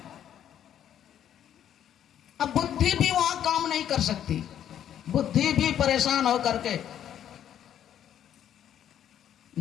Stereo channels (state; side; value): quieter; right; 10.2 dB